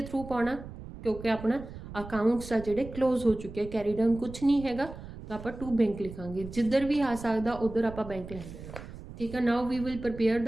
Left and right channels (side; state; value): right; noise; rumble, 13 dB below the sound